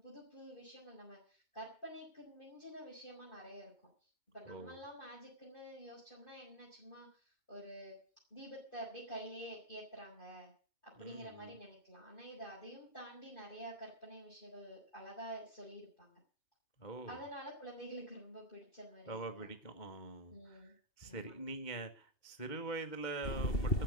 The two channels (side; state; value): right; late; 2.2 ms